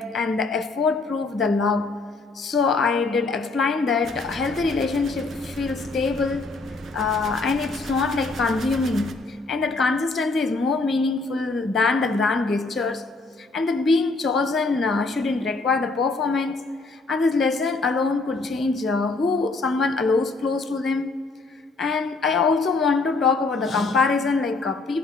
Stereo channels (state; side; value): quieter; right; 3.7 dB